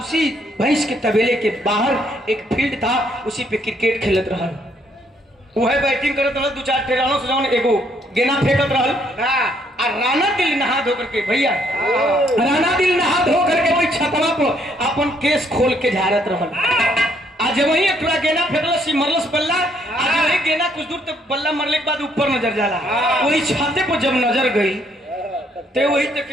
भैंस के तबेले के बाहर एक फील्ड था, उसी पे क्रिकेट खेलत रहा। वह बैटिंग करत रहल, 2-4 टेरानो से जौन एगो गेना फेंकत रहल। आ राणा दिल नहा धो करके भैया, राणा दिल नहा धो करके वही छतवा पर अपन केस खोल के झाड़त रहल। आज वही एक थोड़ा गेना फेंकलस, मरलस बल्ला। आज वही गेना कुछ दूर तक बल्ला मरले के बाद ऊपर नजर जाला। वही छाते पर जब नजर गई तो वही तक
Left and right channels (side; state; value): both; normal; correlation 0.69